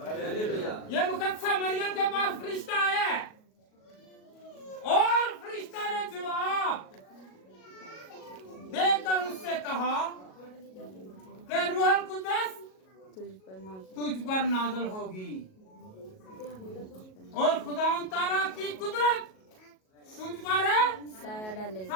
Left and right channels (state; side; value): late; right; 37 ms